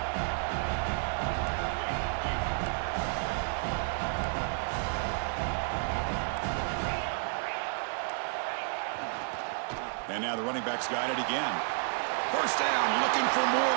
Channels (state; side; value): silent; left; 57 dB below the other